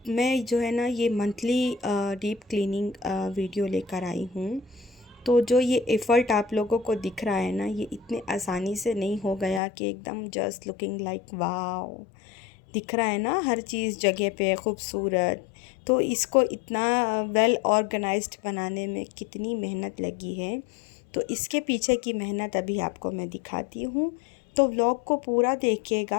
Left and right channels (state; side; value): drops out; right; at 9.6 s